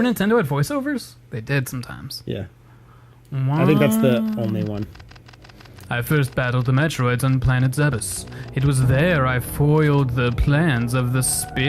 Nintendo had voiceovers? They did sometimes. Yeah. I think that's the only one. I first battled the Metroids on planet Zebes. It was there I foiled the plans of the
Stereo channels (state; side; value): identical; both; correlation 1.00